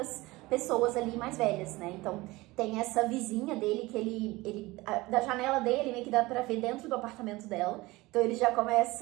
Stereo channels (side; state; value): left; quieter; 20.7 dB